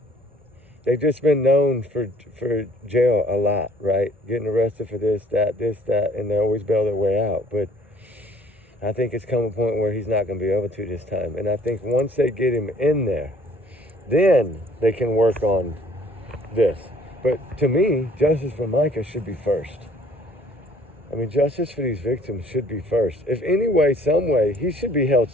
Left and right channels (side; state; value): both; normal; correlation 0.57